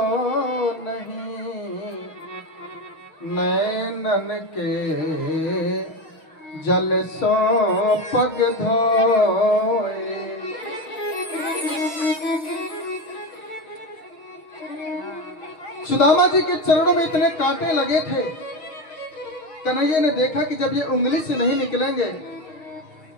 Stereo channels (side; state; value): right; late; 6.3 ms